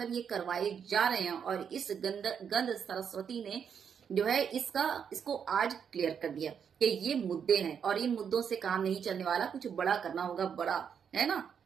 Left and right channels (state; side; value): quieter; left; 7.5 dB